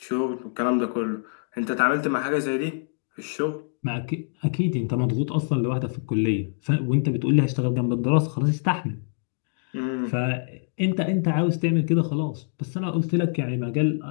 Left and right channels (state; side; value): silent; right; digital silence